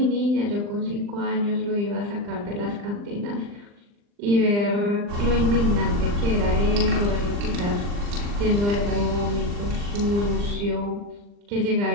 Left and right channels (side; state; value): left; late; 39 ms